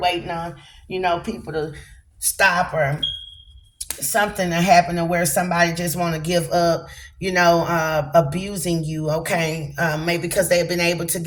waiting on, people to stop or something to happen to where somebody just want to give up, abusing you. Okay, maybe because they've been able to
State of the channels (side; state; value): both; identical; correlation 1.00